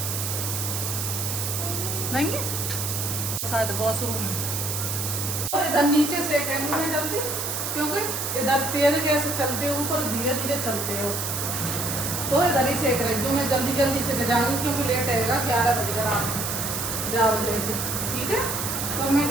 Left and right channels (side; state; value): right; noise; hiss, 2 dB below the sound